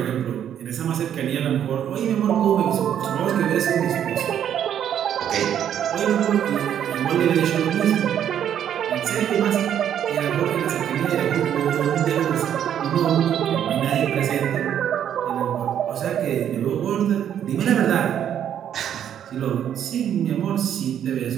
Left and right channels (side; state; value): left; quieter; 9.7 dB